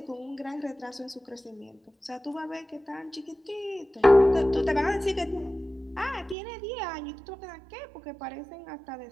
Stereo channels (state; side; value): drops out; left; at 6.4 s